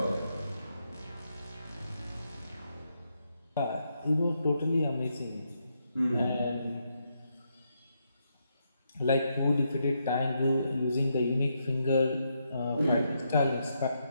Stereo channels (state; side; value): inverted; both; correlation -0.80